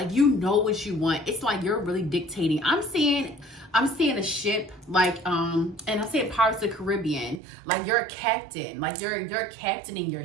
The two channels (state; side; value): drops out; left; at 7.4 s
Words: you know what you want. It's like you're really dictating. I'm seeing a ship, like, and I'm seeing Pirates of the Caribbean. Like, you're a captain. Like, you're captaining your